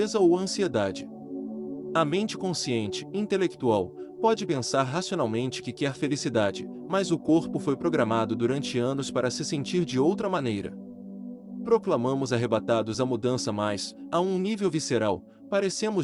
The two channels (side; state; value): both; identical; correlation 1.00